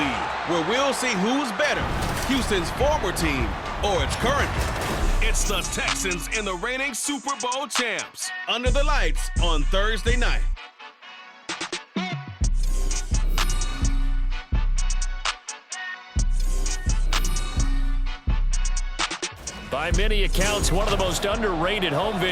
where we'll see who's better, Houston's former team or its current one. It's the Texans and the reigning Super Bowl champs, under the lights on Thursday night. By many accounts, one of the most underrated home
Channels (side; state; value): both; identical; correlation 1.00